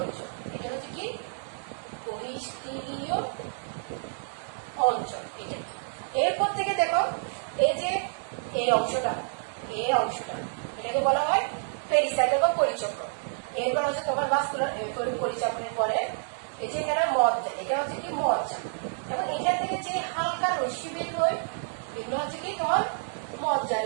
অংশ। এটা হচ্ছে কি বহিঃস্থিরীয় অঞ্চল। এটা এরপর থেকে দেখো এই যে এই অংশটা, এই অংশটা এটাকে বলা হয় পেরিসাইকেল বা পরিচক্র। এরপর হচ্ছে তোমার ভাস্কুলার পরিচক্রের পরে এই যে এখানে মজ্জা, এটা হচ্ছে কি মজ্জা, এবং এখান থেকে যে হালকা রশ্মি বের হয় এগুলো হচ্ছে কি তোমার মজ্জা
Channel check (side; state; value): left; silent; digital silence